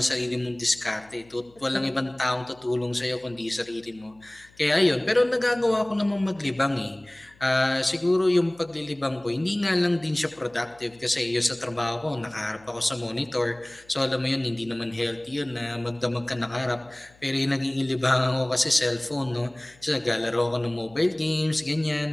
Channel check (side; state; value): left; noise; hum, 28 dB below the sound